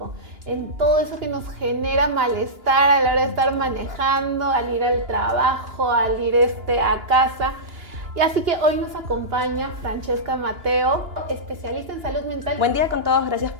en todo eso que nos genera malestar a la hora de estar manejando, al ir al trabajo, al ir a casa. Y así que hoy nos acompaña Francesca Mateo, especialista en salud mental. Buen día con todos, gracias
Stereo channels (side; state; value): left; late; 2.9 ms